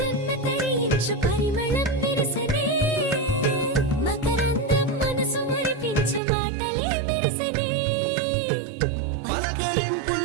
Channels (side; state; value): left; drops out; at 6.2 s